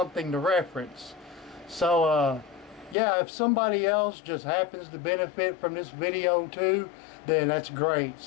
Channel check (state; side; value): drops out; right; at 3.0 s